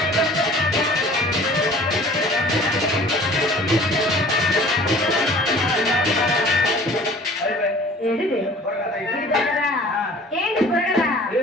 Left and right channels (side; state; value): both; normal; correlation 0.48